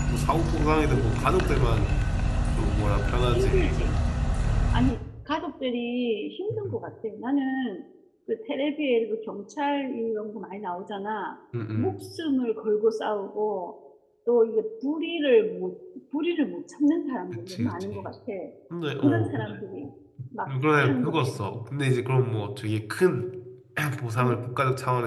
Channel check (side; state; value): both; identical; correlation 1.00